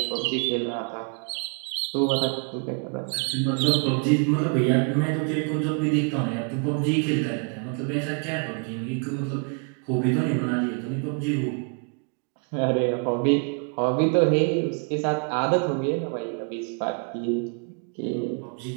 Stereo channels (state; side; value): quieter; left; 39.4 dB